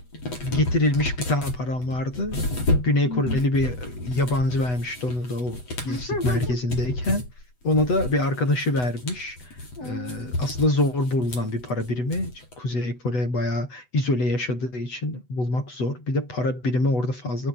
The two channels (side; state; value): right; late; 8.0 ms